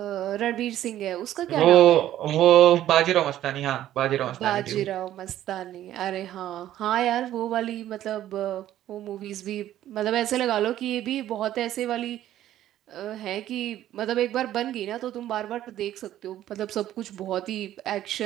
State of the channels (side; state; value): left; quieter; 12.7 dB